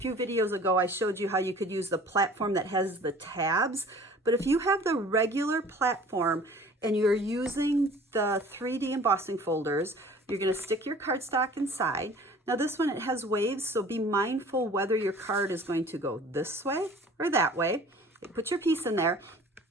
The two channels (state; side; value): normal; both; correlation 0.48